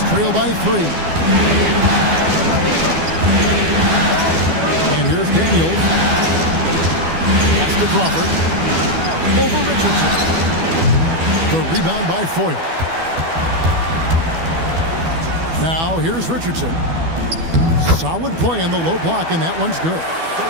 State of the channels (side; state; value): left; late; 12 ms